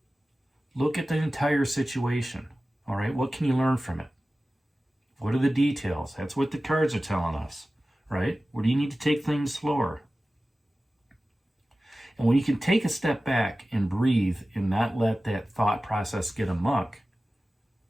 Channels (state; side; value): normal; both; correlation 0.96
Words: Look at the entire situation, all right? What can you learn from it? What are the details? That's what the cards are telling us, right? Where do you need to take things slower? And when you can take a step back and breathe and not let that thought process get amok,